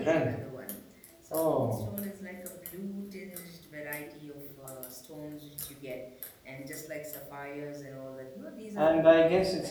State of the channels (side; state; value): both; identical; correlation 1.00